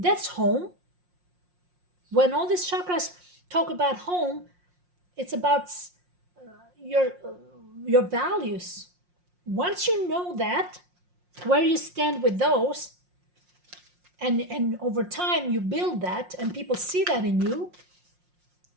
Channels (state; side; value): late; left; 5.6 ms